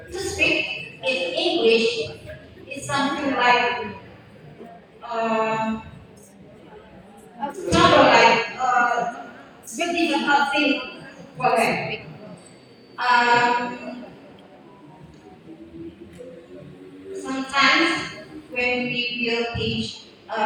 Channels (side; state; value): both; identical; correlation 1.00